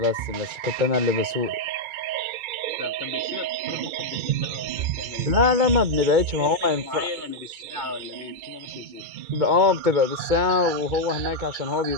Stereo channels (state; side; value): late; left; 2.2 ms